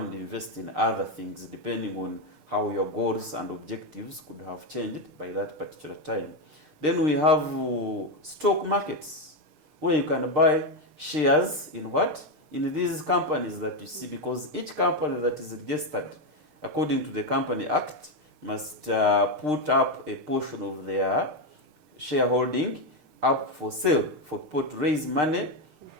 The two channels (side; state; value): left; late; 6.6 ms